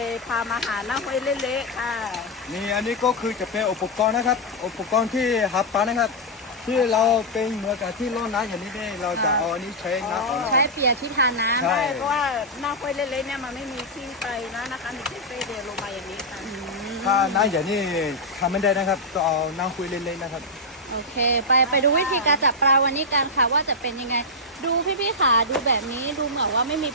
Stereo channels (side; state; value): both; normal; correlation -0.04